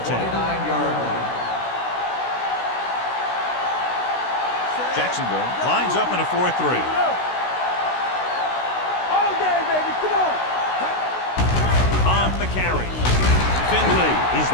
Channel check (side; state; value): right; late; 16 ms